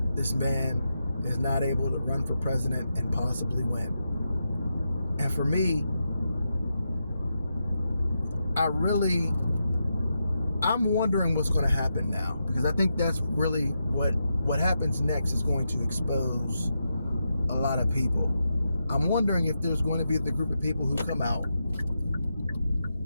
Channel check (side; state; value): both; inverted; correlation -0.86